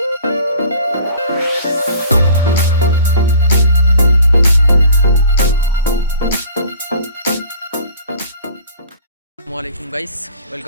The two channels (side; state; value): both; inverted; correlation -0.47